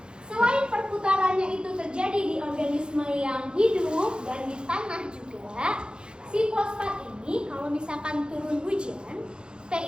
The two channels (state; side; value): late; left; 0.049 ms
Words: Selain perputarannya itu terjadi di organisme yang hidup dan di tanah juga, si fosfat ini kalau misalkan turun hujan, P